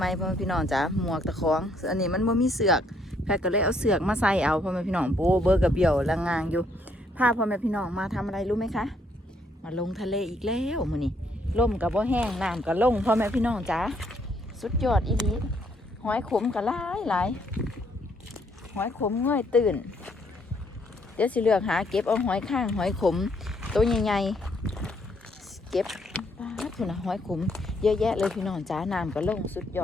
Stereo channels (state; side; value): normal; both; correlation 0.70